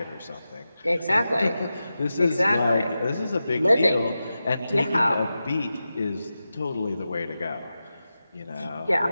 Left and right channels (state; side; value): inverted; both; correlation -0.92